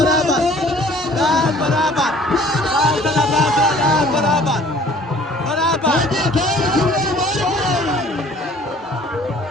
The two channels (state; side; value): normal; both; correlation 0.53